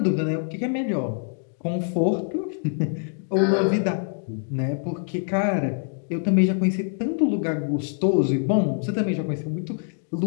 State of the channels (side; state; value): right; silent; 60 dB below the other